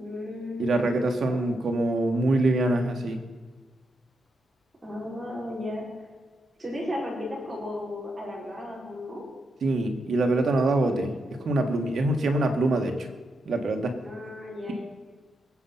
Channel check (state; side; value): normal; both; correlation 0.83